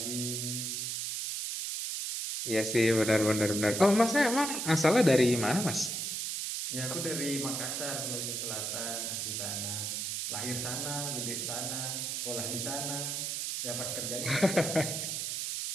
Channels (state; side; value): noise; right; hiss, 2 dB below the sound